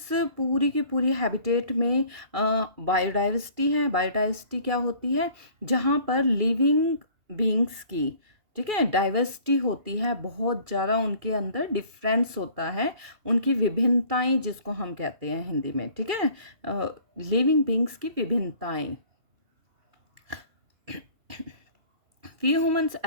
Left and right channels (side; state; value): left; late; 2.3 ms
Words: पूरी की पूरी हैबिटेट में बायोडाइवर्सिटी है। बायोडाइवर्सिटी क्या होती है, जहाँ पर लिविंग बींग्स की, ठीक है, डाइवर्सिटी होती है, बहुत ज़्यादा उनके अंदर डिफरेंस होता है, उनकी विभिन्नताएं जिसको हम कहते हैं हिंदी में, ठीक है, लिविंग बींग्स की विभिन्नताएं। We humans,